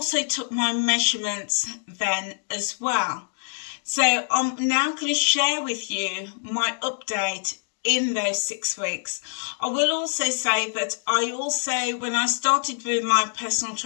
took my measurements then as well. So I'm now going to share with you my update in those 6 weeks. I will also say that when I started with my personal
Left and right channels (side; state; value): right; silent; digital silence